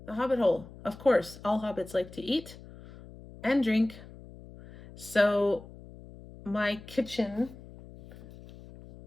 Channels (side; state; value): left; noise; hum, 18 dB below the sound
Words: The Hobbit hole. Of course, all hobbits like to eat and drink. So my kitchen,